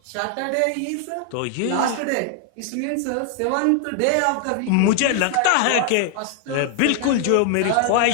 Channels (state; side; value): different; both; correlation 0.00